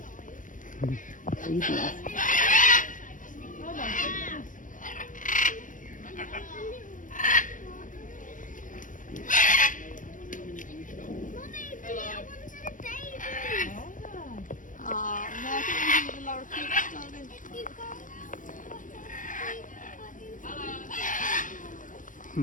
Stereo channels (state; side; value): late; right; 0.38 ms